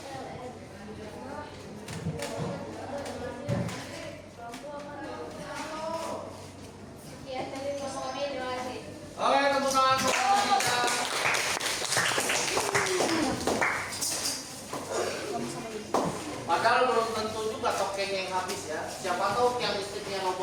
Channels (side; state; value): both; identical; correlation 1.00